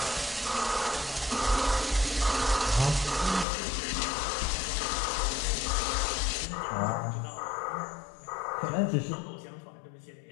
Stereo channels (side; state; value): right; drops out; at 3.5 s